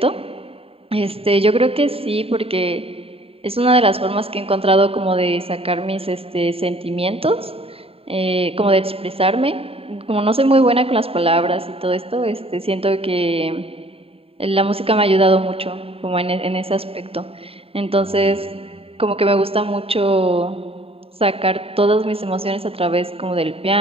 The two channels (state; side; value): late; left; 0.27 ms